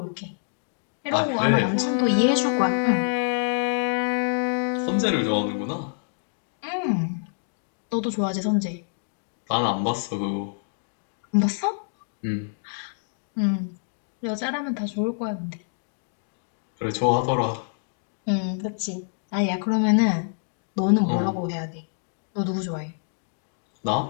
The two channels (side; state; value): right; silent; digital silence